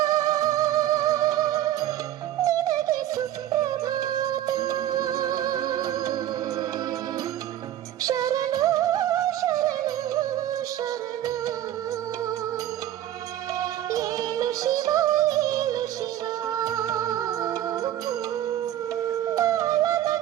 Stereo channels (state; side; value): quieter; left; 12.4 dB